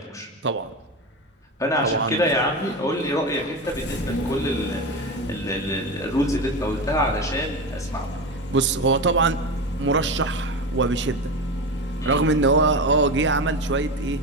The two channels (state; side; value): normal; both; correlation 0.22